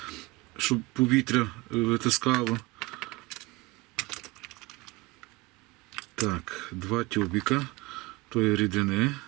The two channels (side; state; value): left; quieter; 23.0 dB